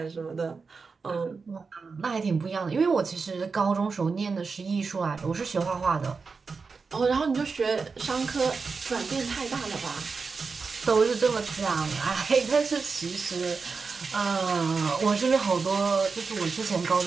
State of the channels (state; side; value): quieter; left; 4.8 dB